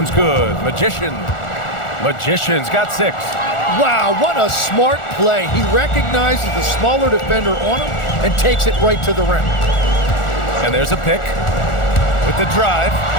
good. Magician's got 6. Wow, what a smart play. He recognizes the smaller defender on him and takes it right to the rim. And there's a pick with the drive.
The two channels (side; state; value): right; late; 1.4 ms